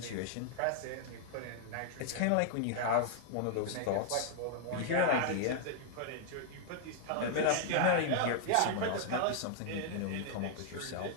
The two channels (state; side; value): different; both; correlation -0.01